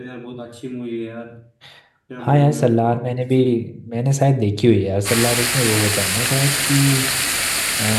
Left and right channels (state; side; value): identical; both; correlation 1.00